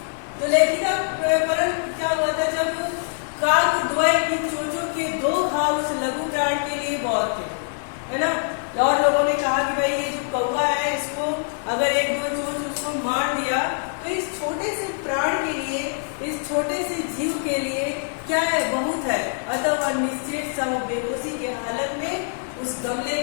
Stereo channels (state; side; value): silent; right; digital silence